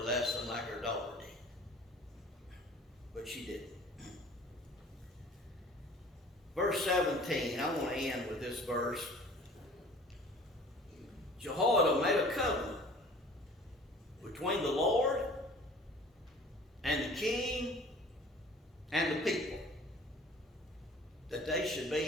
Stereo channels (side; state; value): both; normal; correlation 0.48